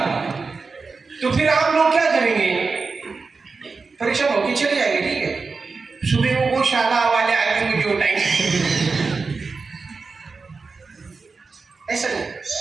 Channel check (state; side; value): quieter; left; 4.4 dB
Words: तो फिर आप लोग क्या करेंगे? परीक्षा होगी चले जाएंगे, ठीक है सुबह वो गौशाला वाले आएंगे मुझे उठाएंगे, ऐसा नहीं।